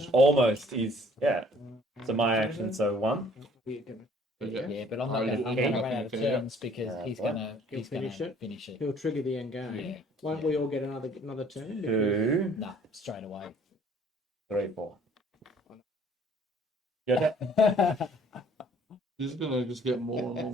Almost is, yeah. So my action, so 1. We're gonna- Yeah. Yeah, but I'm Oh, not going you- to okay. run out of Okay, yeah. turns because he's what? going to He'll finish it? finish it. He'll trigger the end game. Yeah. Won't we all get another turn? 2, Nah, straight away. 3, 4. Good. This is going to just get more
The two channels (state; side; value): normal; both; correlation 0.57